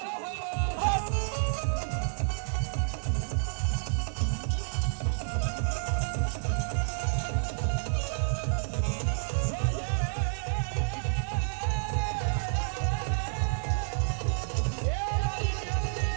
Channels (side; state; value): left; silent; digital silence